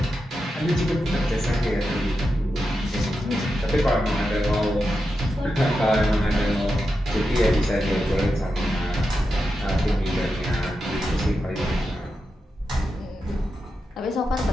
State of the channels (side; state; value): both; normal; correlation 0.88